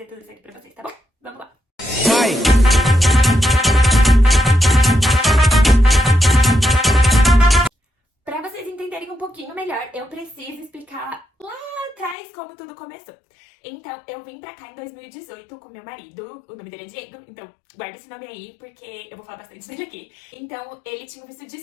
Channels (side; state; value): right; drops out; at 12.2 s